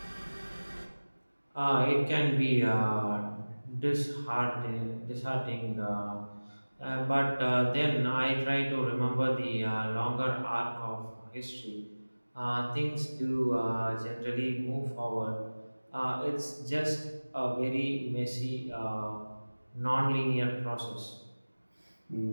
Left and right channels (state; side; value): inverted; both; correlation -1.00